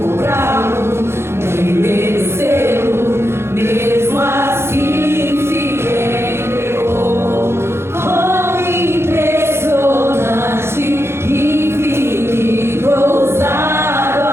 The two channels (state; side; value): late; left; 0.12 ms